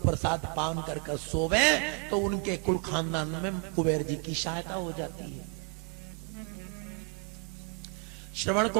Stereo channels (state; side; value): quieter; left; 31.6 dB